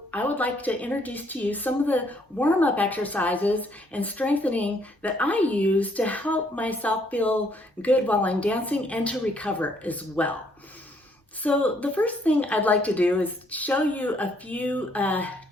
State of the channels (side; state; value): both; normal; correlation 0.68